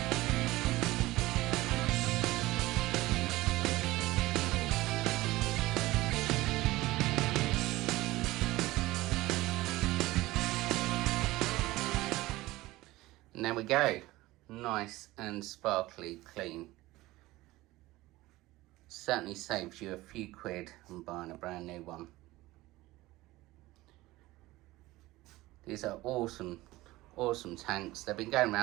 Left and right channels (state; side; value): quieter; left; 18.5 dB